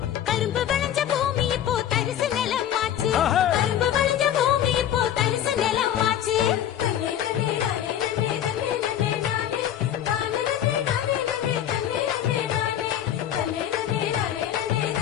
கரும்பு விளைஞ்ச பூமி இப்போ தரிசு நிலமாச்சு. கரும்பு விளைஞ்ச பூமி இப்போ தரிசு நிலமாச்சு.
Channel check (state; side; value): quieter; right; 10.7 dB